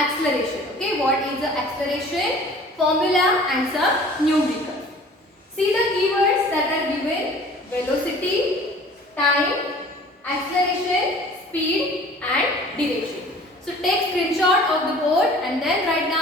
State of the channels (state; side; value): normal; both; correlation 0.48